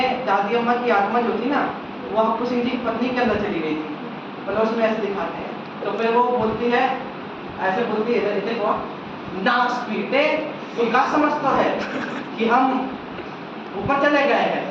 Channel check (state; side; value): identical; both; correlation 1.00